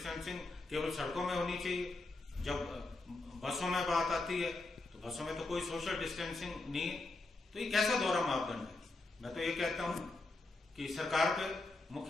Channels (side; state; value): right; quieter; 3.2 dB